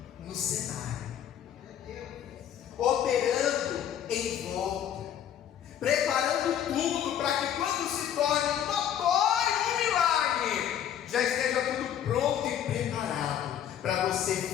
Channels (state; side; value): quieter; right; 10.0 dB